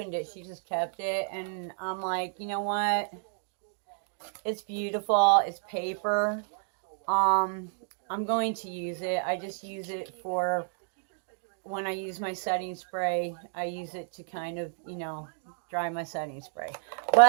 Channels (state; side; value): silent; left; digital silence